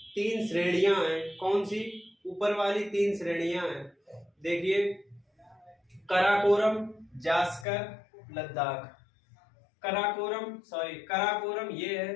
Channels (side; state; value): right; drops out; at 7.7 s